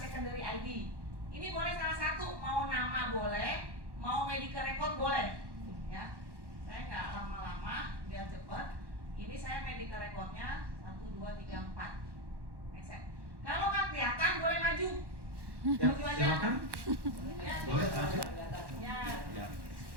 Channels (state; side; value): late; left; 1.1 ms